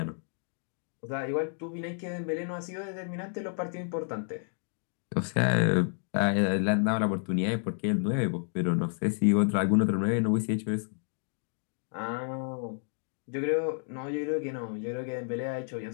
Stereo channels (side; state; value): right; silent; 57 dB below the other